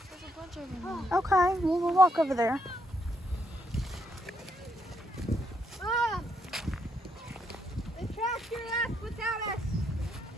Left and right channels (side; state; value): both; normal; correlation 0.76